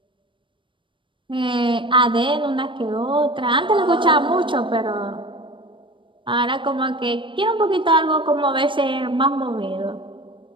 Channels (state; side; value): late; left; 0.24 ms